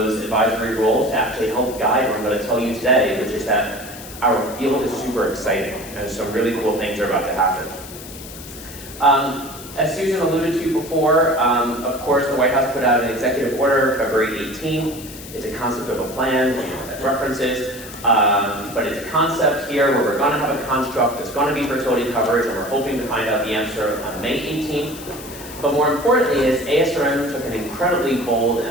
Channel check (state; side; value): noise; left; hiss, 15 dB below the sound